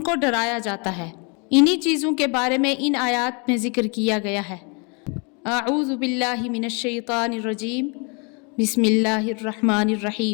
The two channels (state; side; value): quieter; right; 33.7 dB